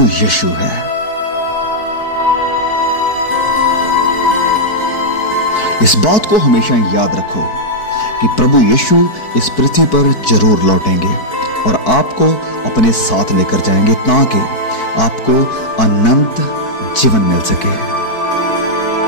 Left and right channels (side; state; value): right; late; 4.6 ms